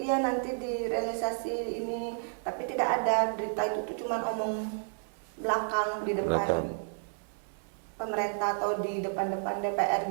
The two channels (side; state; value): left; silent; 57 dB below the other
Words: direalisasi ini, tapi tidak ada berita itu tuh cuma omong belakang di depan pemerintah atau di depan DPR